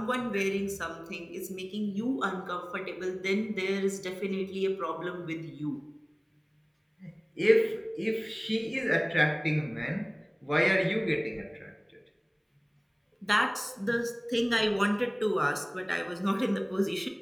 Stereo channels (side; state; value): both; identical; correlation 1.00